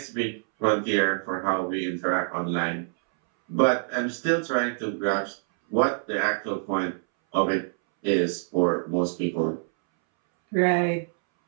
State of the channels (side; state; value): left; silent; 61 dB below the other